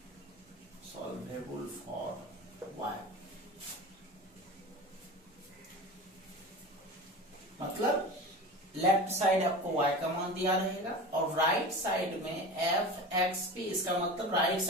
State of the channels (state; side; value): normal; both; correlation 0.31